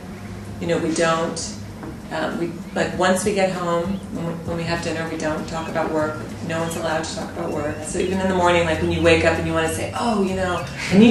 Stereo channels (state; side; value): identical; both; correlation 1.00